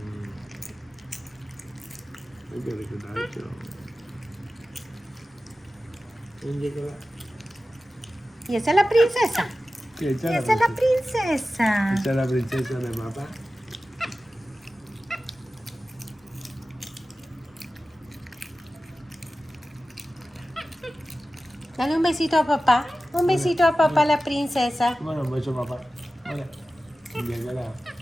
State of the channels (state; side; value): normal; both; correlation 0.95